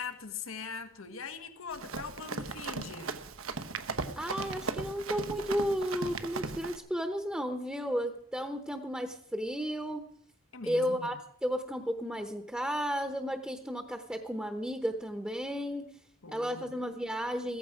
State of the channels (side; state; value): both; normal; correlation 0.72